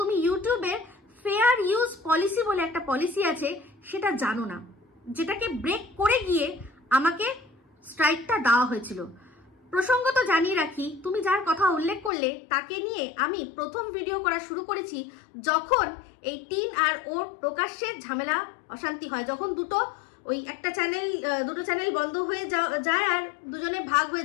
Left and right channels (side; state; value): right; drops out; at 12.1 s